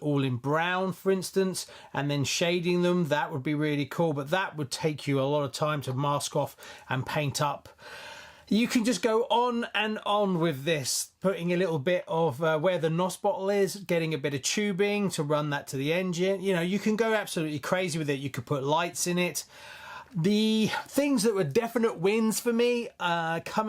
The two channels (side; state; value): both; identical; correlation 1.00